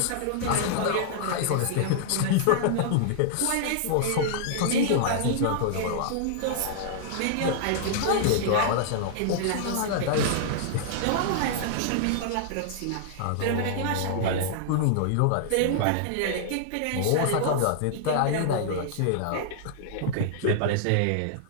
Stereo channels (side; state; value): both; different; correlation -0.01